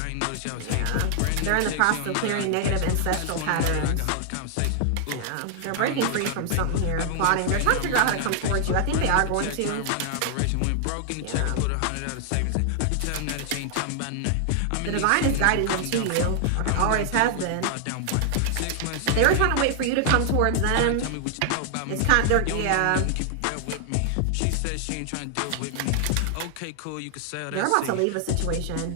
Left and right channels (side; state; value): both; different; correlation 0.00